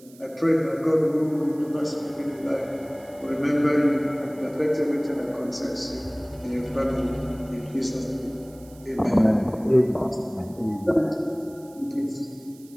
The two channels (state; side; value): noise; right; hiss, 25 dB below the sound